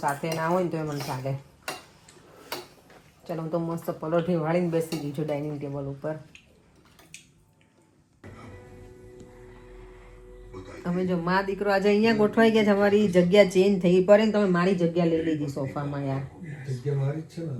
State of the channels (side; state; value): both; identical; correlation 1.00